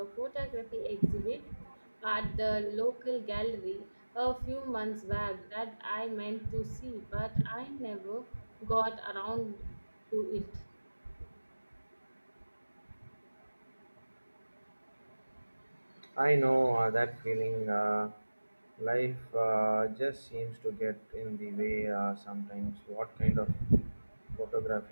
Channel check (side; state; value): both; inverted; correlation -1.00